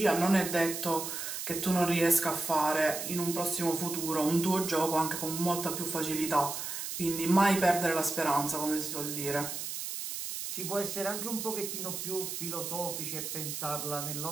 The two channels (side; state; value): right; noise; hiss, 5 dB below the sound